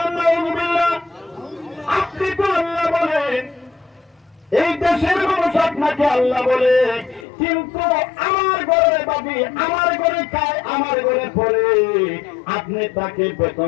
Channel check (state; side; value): drops out; right; at 7.2 s